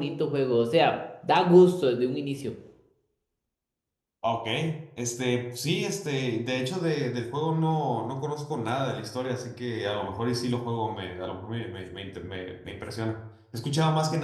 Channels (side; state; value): both; identical; correlation 1.00